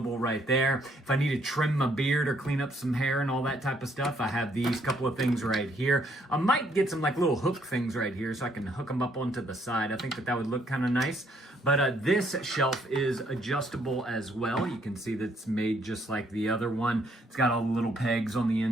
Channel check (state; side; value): normal; both; correlation 0.68